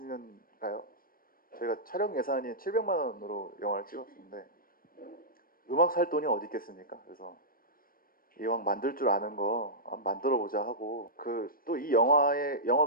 저희가 촬영 예산이 700만 원으로 영화를 찍었는데 음악 살 돈이 어디 있겠습니까? 그래서 이왕 만들 줄 아는 거 만들어 보자 하고 그 또 이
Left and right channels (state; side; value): late; right; 0.42 ms